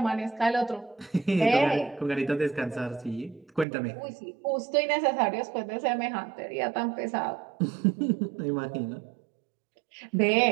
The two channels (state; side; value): drops out; left; at 3.7 s